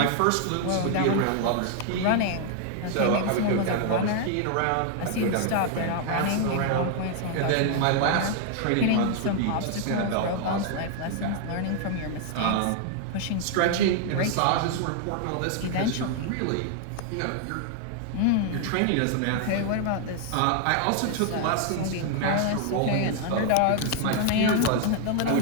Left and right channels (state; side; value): different; both; correlation 0.00